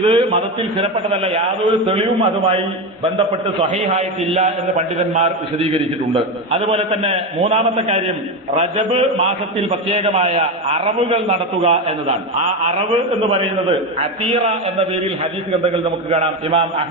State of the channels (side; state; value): both; normal; correlation 0.16